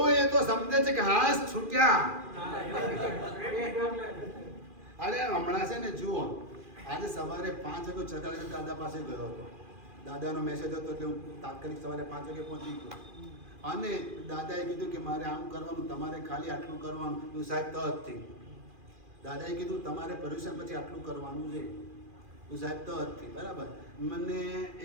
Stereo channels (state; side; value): late; left; 2.4 ms